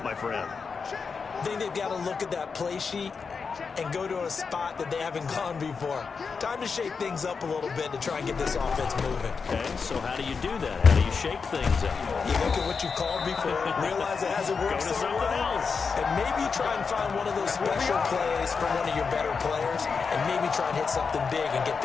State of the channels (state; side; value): quieter; right; 5.3 dB